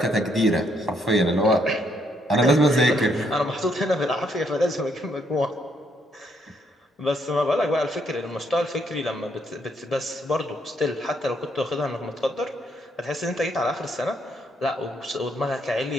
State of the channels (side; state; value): both; normal; correlation 0.72